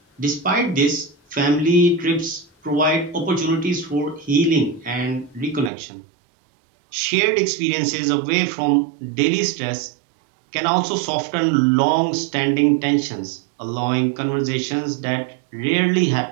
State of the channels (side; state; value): left; drops out; at 5.7 s